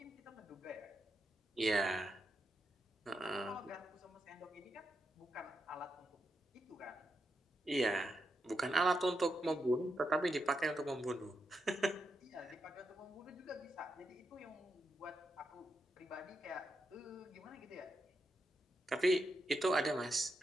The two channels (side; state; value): both; normal; correlation 0.84